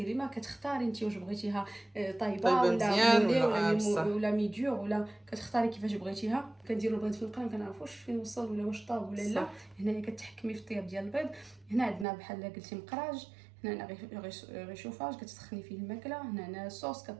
ما كتختاري انت واش بغيتيها طايبه ولا ميديور ولا كتختاري كيفاش بغيتيها. كنديروا البيض في القرن ما كنعرفوش فين وصل ولا واش طاب ولا لا. هنايا كتحكمي في الطياب ديال البيض. هنا عندنا بحال قلتي مقراج، هنا غيشوفاج كتسخني فيه الماكله. هنا صوص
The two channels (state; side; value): drops out; left; at 12.1 s